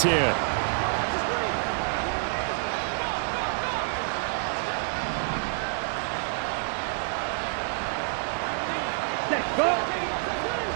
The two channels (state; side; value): silent; left; digital silence